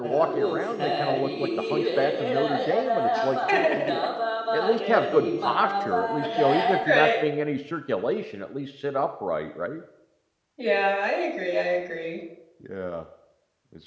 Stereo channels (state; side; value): identical; both; correlation 1.00